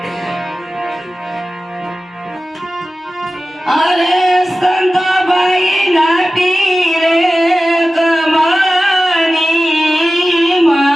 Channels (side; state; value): both; normal; correlation 0.95